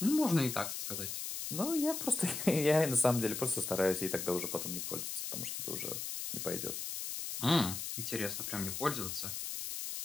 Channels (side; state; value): left; noise; hiss, 5 dB below the sound